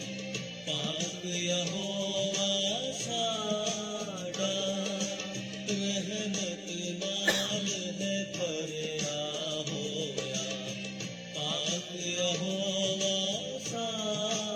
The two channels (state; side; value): identical; both; correlation 1.00